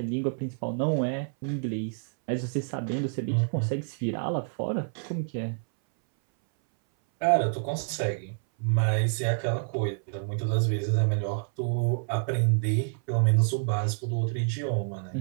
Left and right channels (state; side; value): silent; left; 59 dB below the other